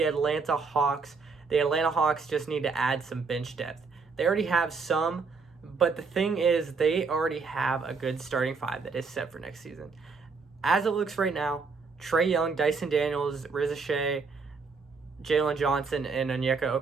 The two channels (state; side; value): quieter; left; 4.7 dB